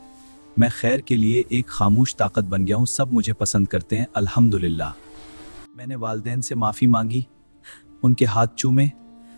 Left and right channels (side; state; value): both; inverted; correlation -1.00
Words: मैं खैर के लिए एक खामोश ताकत बन गया हूँ। सब मुझे पसंद करते हैं, अल्हम्दुलिल्लाह। मैंने वालिदैन से माफ़ी मांगी, उनके हाथ चूमे